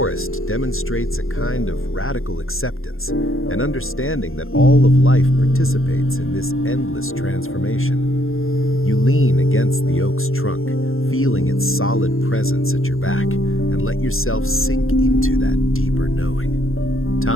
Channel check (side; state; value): right; late; 0.61 ms